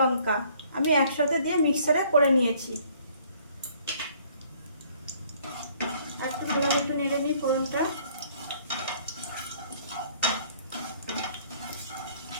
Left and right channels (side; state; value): both; inverted; correlation -0.59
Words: আমি একসাথে দিয়ে মিক্সারে করে নিয়েছি। একটু ভালো একটু নেড়ে নিই ফোড়নটা।